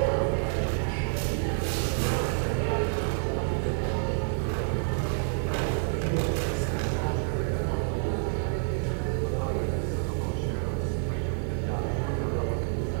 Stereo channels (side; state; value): left; silent; 59 dB below the other